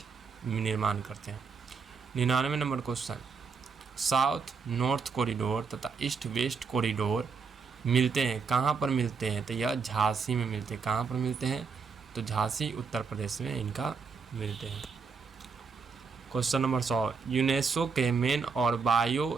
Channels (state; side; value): quieter; left; 5.3 dB